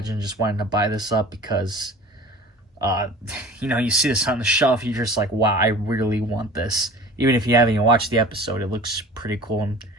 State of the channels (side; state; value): both; normal; correlation 0.42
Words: just wanting to buy this up because, you see this on the shelf, you're just like, wow, I really want this. Even if you haven't even watched the episode, it looks pretty cool, and